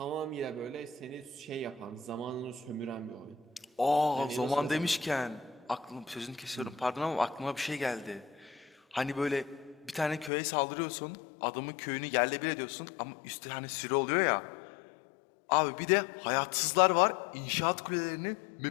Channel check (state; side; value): drops out; right; at 10.3 s